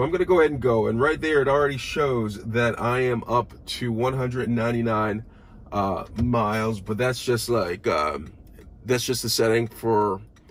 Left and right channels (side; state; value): both; identical; correlation 1.00